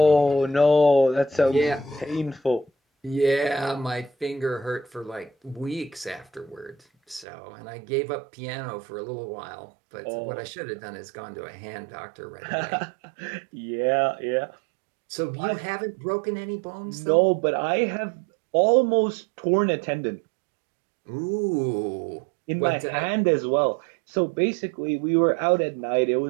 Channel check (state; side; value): drops out; left; at 7.2 s